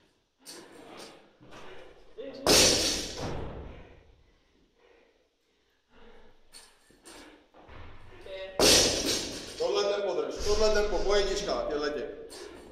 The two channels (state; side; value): identical; both; correlation 1.00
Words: Tohle tempo, po jedničkách, těhletě.